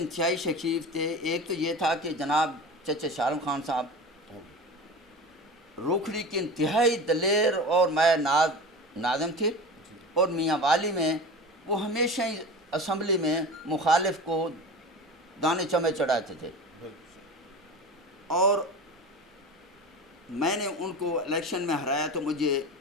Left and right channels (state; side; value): normal; both; correlation 0.32